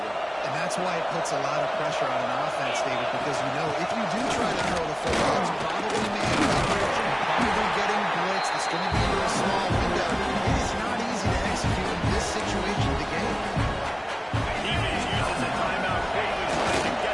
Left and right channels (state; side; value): identical; both; correlation 1.00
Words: And that's why it puts a lot of pressure on an offense, David, because you know if you do try to throw the football, it's probably man coverage, probably getting blitzed. It's going to be into a small window. It is not easy to execute in this situation of the game. Defense uses a timeout quickly, trying to